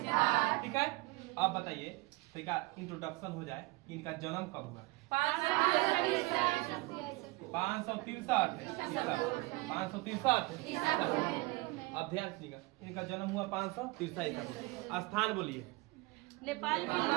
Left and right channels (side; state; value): left; quieter; 23.6 dB